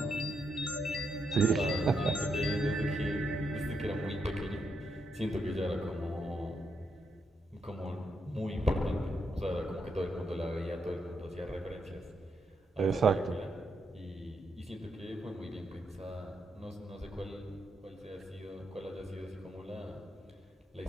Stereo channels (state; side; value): normal; both; correlation 0.80